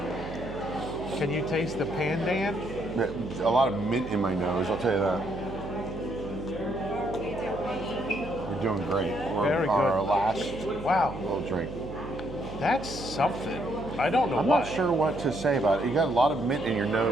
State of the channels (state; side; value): noise; right; hum, 11 dB below the sound